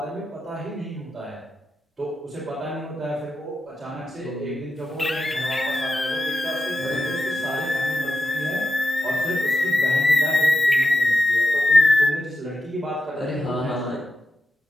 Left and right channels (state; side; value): normal; both; correlation 0.90